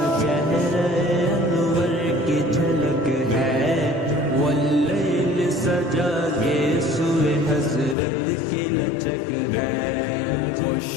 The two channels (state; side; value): drops out; right; at 8.0 s